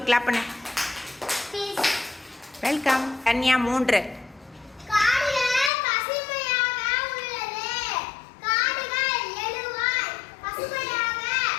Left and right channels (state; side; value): drops out; right; at 5.7 s